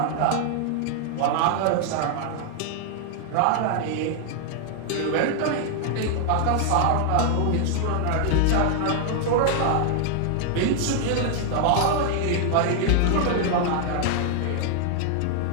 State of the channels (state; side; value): different; both; correlation 0.00